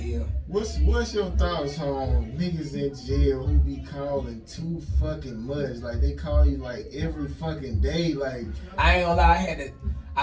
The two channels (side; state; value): both; identical; correlation 1.00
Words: What's your thoughts on niggas in jail who be calling too fucking much? Like they call you like every fucking day. Like I ain't gonna lie,